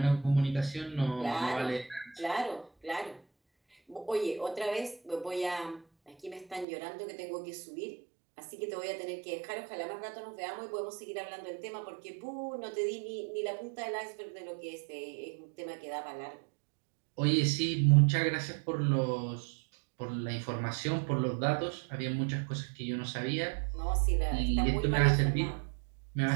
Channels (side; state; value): left; drops out; at 6.7 s